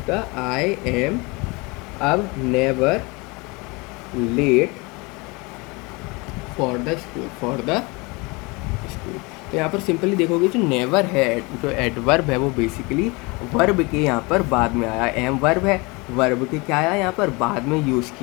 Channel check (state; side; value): quieter; right; 26.6 dB